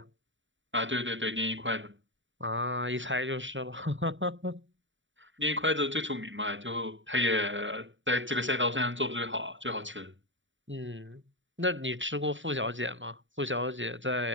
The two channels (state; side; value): late; left; 0.55 ms